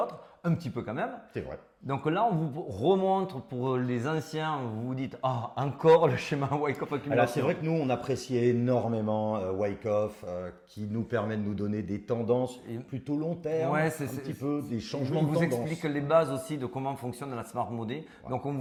un petit peu quand même. C'est vrai. Donc là, on vous remontre pour les anciens, vous vous dites, encore le schéma Wyckoff accumulation. Alors c'est vrai que nous, on apprécie énormément Wyckoff, qui nous permet de nous donner des tendances plutôt long terme, un petit peu des changements de tendance. Il vous explique les bases aussi de comment fonctionne la Smart Money. Ouais. Donc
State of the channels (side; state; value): both; identical; correlation 1.00